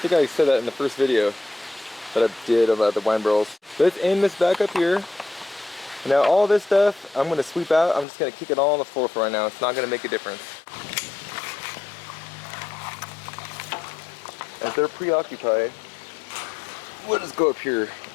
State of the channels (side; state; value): right; drops out; at 8.1 s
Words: think I said that in the first video that I did about the wine barrels. Let's aim this back up here. Now all this stuff, I'm going to sweep out. I'm just going to kick it all on the floor for right now. It's not going to make a difference. As they're preoccupied, we'll just go up here